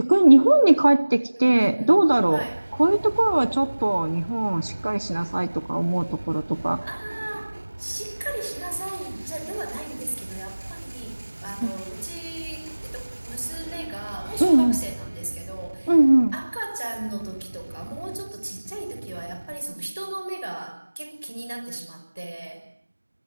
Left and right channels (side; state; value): both; inverted; correlation -1.00